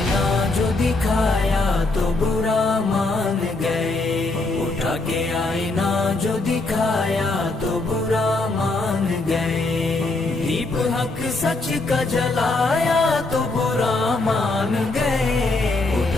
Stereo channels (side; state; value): right; quieter; 3.2 dB